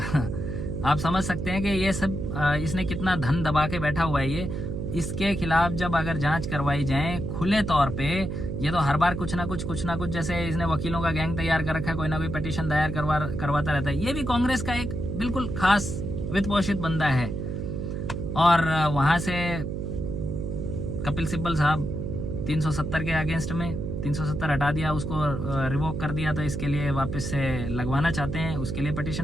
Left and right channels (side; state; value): right; noise; hum, 4 dB below the sound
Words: आप समझ सकते हैं कि ये सब इसने कितना धन दबा के बैठा हुआ है। ये इसके खिलाफ जब अगर जांच करवाई जाए खुले तौर पे, ये तो हर बार कुछ ना कुछ जैसे इसने वकीलों का गैंग तैयार कर रखा है, कोई ना कोई पिटीशन दायर करवाता रहता है। ये भी कांग्रेस का एक बिल्कुल खास वित्त पोषित बंदा है। और वहां से कपिल सिब्बल साहब 370 के अगेंस्ट में 370 हटा दिया, उसको रिवोक कर दिया, तो इसके लिए वापस से लगवाना चाहते हैं, उसके लिए